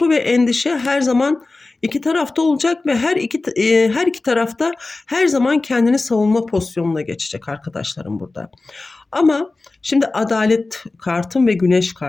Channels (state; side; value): quieter; right; 3.4 dB